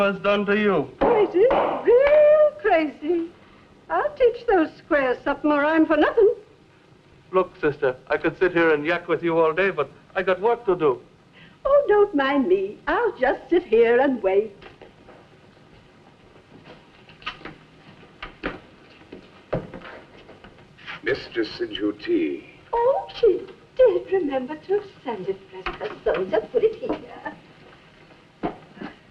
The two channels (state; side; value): identical; both; correlation 1.00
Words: done to you. Crazy, real crazy. I'll teach those squares something or I'm for nothing. Look, sister, I could sit here and yak with you all day, but I got work to do. Oh, don't mind me. I'll just sit here and wait. Mistress Sinjuti. Oh, she did remember to send it, bless her soul. Just put it here.